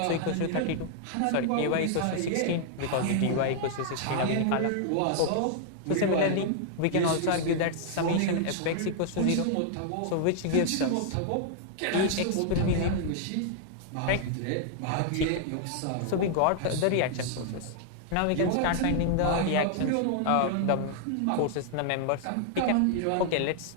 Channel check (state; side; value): different; both; correlation 0.00